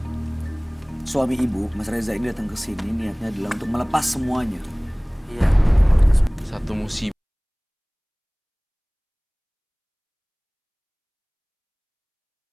suami ibu, Mas Reza ini datang ke sini niatnya adalah untuk melepas semuanya. Iya. Satu musibah.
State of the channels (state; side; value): identical; both; correlation 1.00